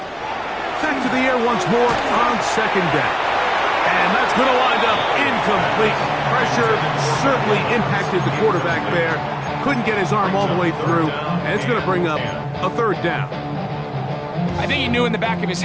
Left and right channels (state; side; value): identical; both; correlation 1.00